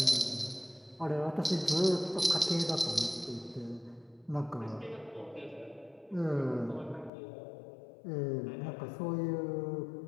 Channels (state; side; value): drops out; right; at 7.1 s